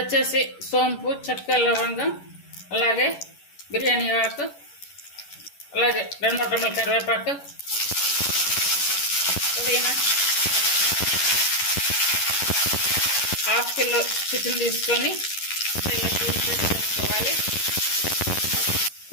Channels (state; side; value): late; right; 11 ms